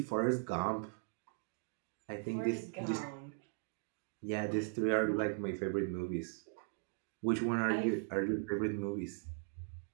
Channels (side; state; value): left; silent; 52 dB below the other